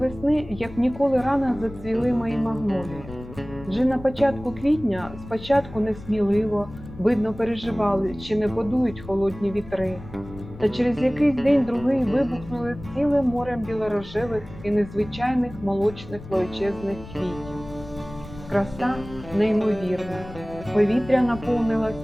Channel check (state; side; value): noise; left; rumble, 15 dB below the sound